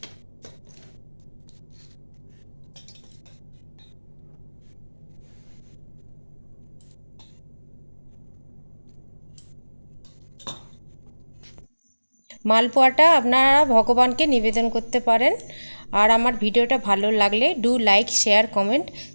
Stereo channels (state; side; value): inverted; both; correlation -1.00